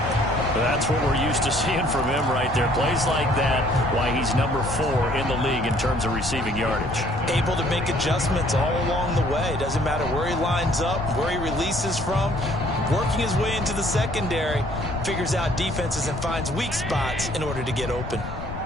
That's what we're used to seeing from him right there. Plays like that, why he's #4 in the league in terms of receiving yardage. Able to make adjustments all along the way. Doesn't matter where he lines up, where he releases from. Working his way into the secondary, figures out defenses and finds weak spots in order to get open.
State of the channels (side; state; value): left; noise; rumble, 9 dB below the sound